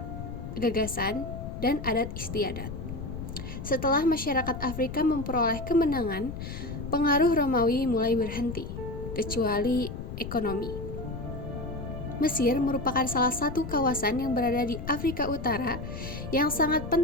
gagasan, dan adat istiadat. Setelah masyarakat Afrika memperoleh kemenangan, pengaruh Romawi mulai berhenti, kecuali ekonomi. Mesir merupakan salah satu kawasan yang berada di Afrika Utara yang sangat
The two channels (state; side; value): noise; left; rumble, 8 dB below the sound